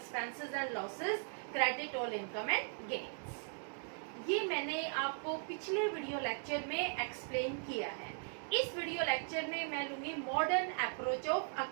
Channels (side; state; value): left; silent; 52 dB below the other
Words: and losses, credit all income and gains. ये मैंने आपको पिछले वीडियो लेक्चर में एक्सप्लेन किया है। इस वीडियो लेक्चर में मैं लूंगी मॉडर्न अप्रोच ऑफ